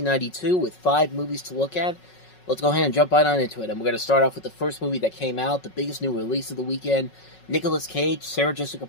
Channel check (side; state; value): right; late; 5.4 ms